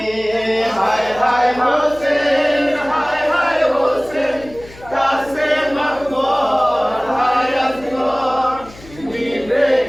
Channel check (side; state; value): left; noise; hum, 20 dB below the sound